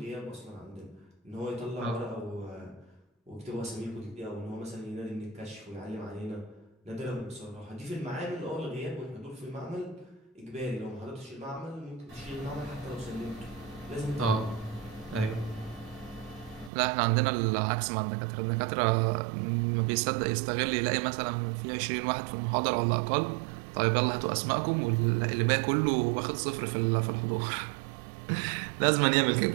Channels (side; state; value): left; drops out; at 16.7 s